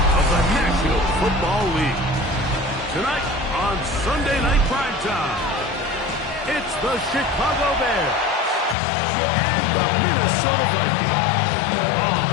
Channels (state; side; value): drops out; right; at 8.8 s